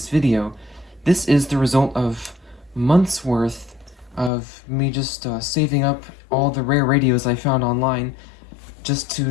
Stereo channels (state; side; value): drops out; right; at 4.3 s